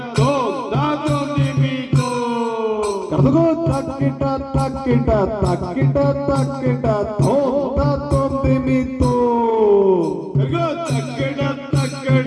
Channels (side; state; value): both; identical; correlation 1.00